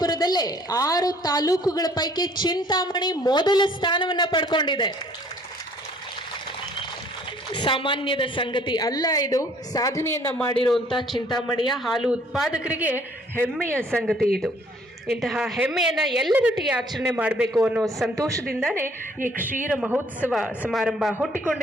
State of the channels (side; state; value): both; normal; correlation 0.59